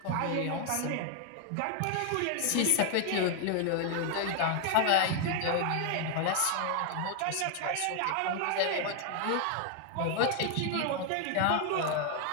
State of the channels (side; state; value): both; different; correlation 0.00